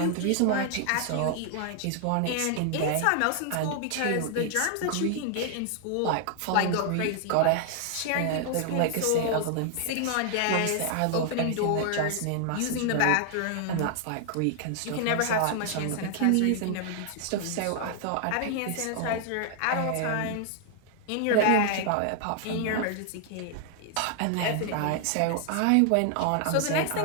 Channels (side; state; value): both; different; correlation 0.00